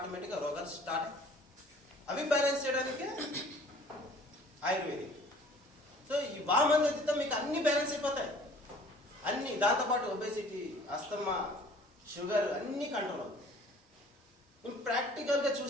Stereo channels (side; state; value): both; normal; correlation 0.51